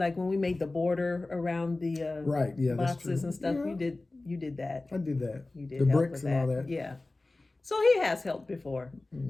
when we made the border around the right, yeah, boxes and stuff, yeah. you did that. I did that. You did the help bricks with and that. all that. Yeah. So he has helped before.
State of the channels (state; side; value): quieter; right; 3.1 dB